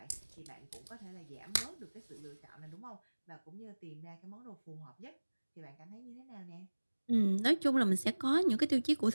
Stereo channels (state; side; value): inverted; both; correlation -1.00